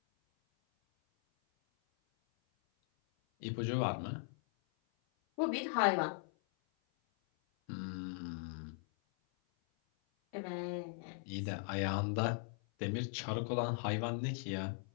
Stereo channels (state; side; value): silent; right; 52 dB below the other